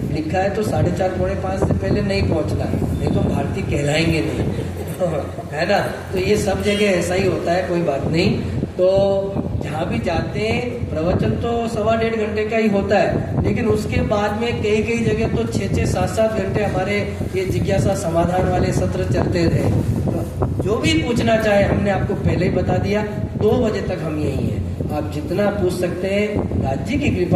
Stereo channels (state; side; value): identical; both; correlation 1.00